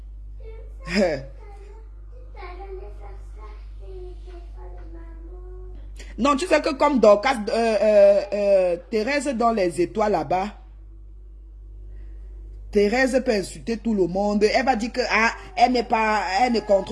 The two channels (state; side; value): identical; both; correlation 1.00